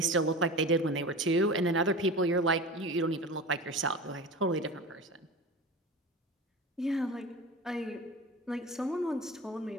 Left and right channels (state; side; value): normal; both; correlation 0.31